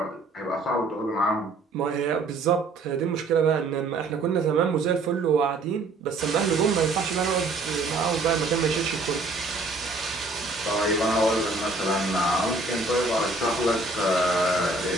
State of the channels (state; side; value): quieter; left; 3.3 dB